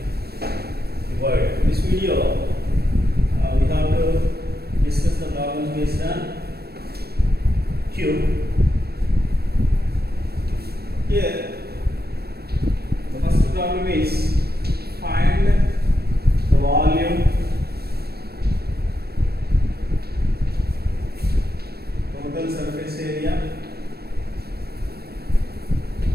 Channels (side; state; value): left; late; 0.46 ms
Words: cuboid. In this video, we have to discuss the problems based on cube. Here, the first problem is find the volume, total surface area,